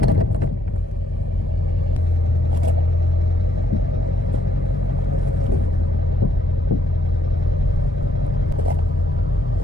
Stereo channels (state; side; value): normal; both; correlation 0.73